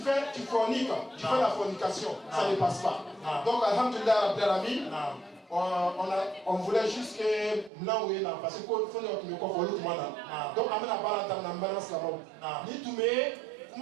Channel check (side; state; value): left; drops out; at 7.7 s